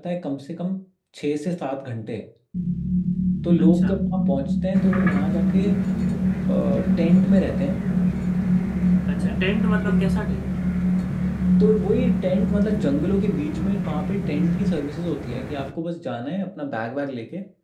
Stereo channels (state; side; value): identical; both; correlation 1.00